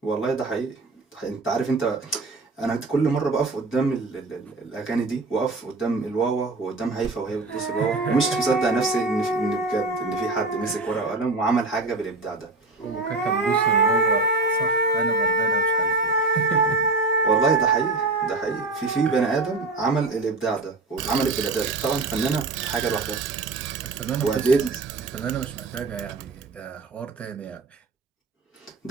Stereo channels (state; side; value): quieter; left; 3.4 dB